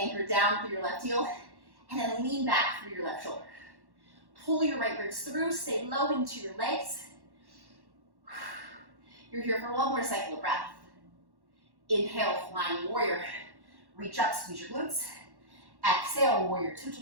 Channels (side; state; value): left; late; 1.1 ms